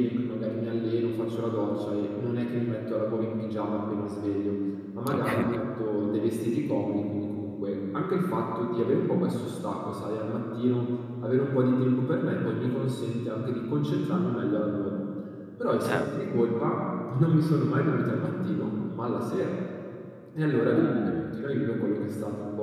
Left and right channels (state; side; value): identical; both; correlation 1.00